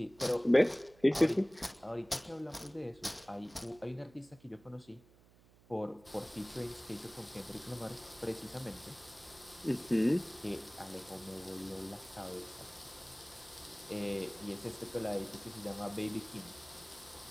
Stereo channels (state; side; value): noise; right; hum, 26 dB below the sound